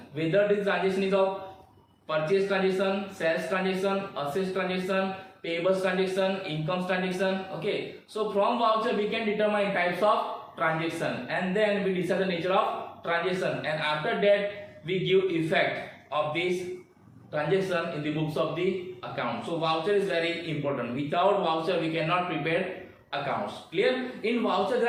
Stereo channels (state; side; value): identical; both; correlation 1.00